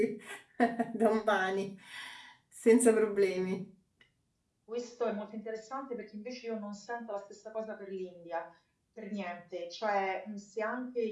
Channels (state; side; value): identical; both; correlation 1.00